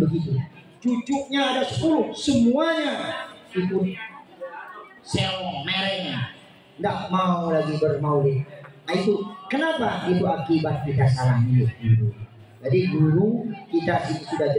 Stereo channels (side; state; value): both; identical; correlation 1.00